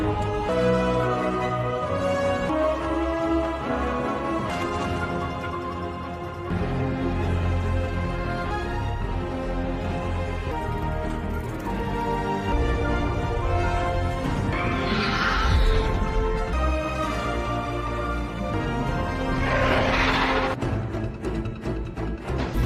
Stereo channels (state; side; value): identical; both; correlation 1.00